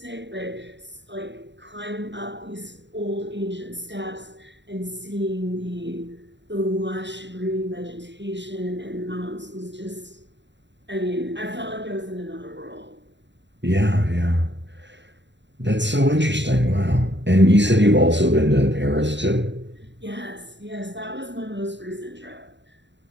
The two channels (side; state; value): left; late; 0.52 ms